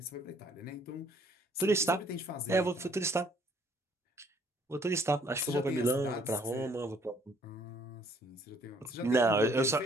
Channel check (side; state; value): both; normal; correlation 0.62